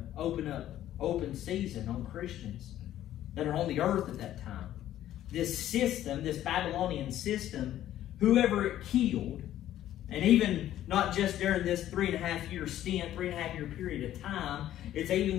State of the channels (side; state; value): right; quieter; 12.5 dB